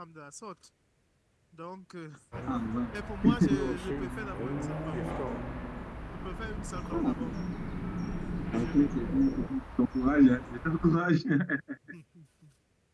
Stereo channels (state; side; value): identical; both; correlation 1.00